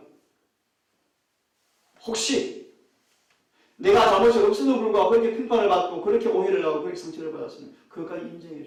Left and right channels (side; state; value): both; identical; correlation 1.00